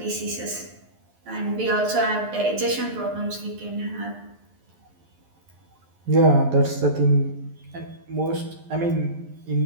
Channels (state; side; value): late; left; 11 ms